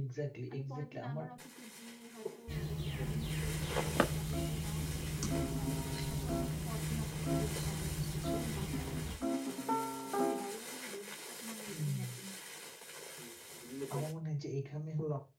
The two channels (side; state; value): both; identical; correlation 1.00